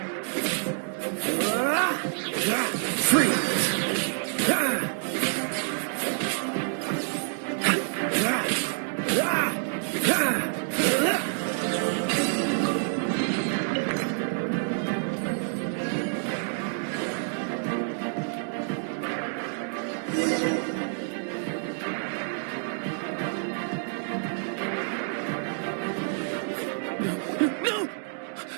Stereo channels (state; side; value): silent; left; 59 dB below the other